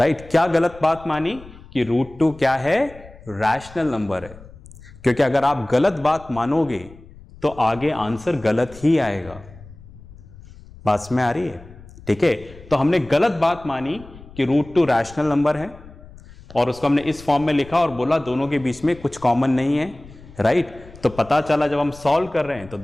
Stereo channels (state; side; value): noise; left; rumble, 20 dB below the sound